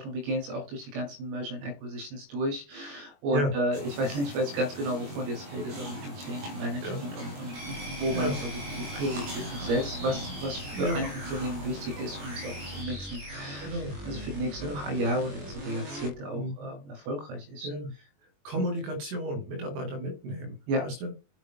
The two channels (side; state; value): left; late; 21 ms